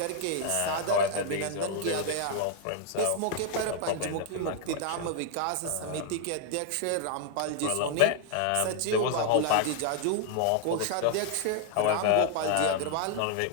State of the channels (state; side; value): different; both; correlation 0.00